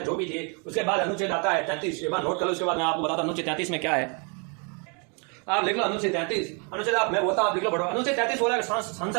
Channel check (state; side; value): quieter; left; 35.2 dB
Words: जो भी थी। उसके बाद अनुच्छेद आता है 33, एक बार नोट कर लो, उसके बाद मैं आपको बताता हूं अनुच्छेद 33 में क्या है। आप लिख लो अनुच्छेद 33, अनुच्छेद आप मैं बोलता हूं आप लिख लो पढ़ो। अनुच्छेद 33 बोला